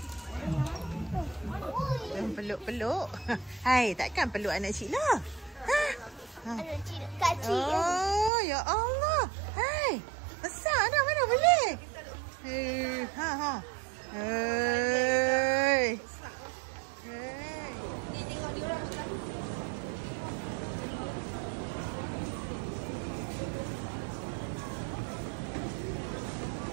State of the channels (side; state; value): left; drops out; at 8.3 s